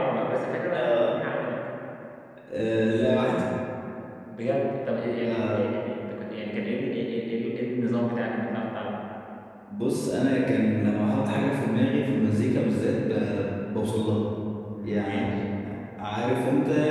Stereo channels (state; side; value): identical; both; correlation 1.00